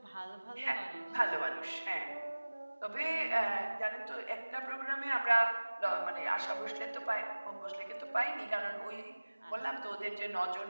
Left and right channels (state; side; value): inverted; both; correlation -1.00